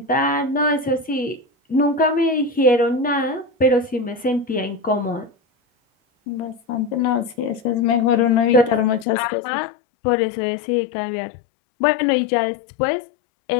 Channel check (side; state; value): right; drops out; at 9.1 s